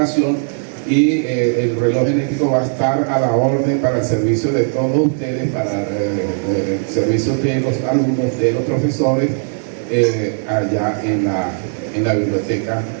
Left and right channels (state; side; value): silent; left; digital silence